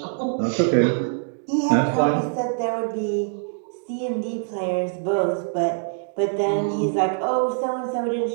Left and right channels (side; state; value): left; silent; digital silence